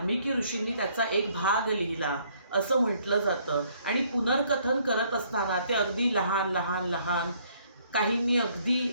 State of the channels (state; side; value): inverted; both; correlation -0.65